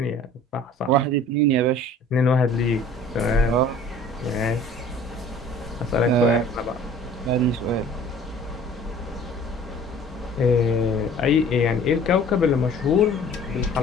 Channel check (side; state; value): both; normal; correlation 0.48